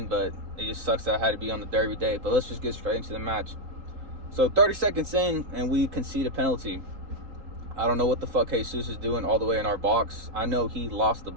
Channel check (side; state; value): left; late; 3.8 ms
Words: but it just sucks that I had to be on the derby day. But let's just get straight into the match. So 30 seconds in, and we concede a penalty. I don't know what the fuck Jesus is doing all the way in our box. I know he lost the